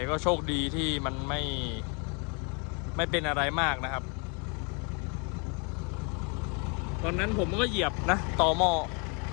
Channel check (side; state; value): right; quieter; 34.9 dB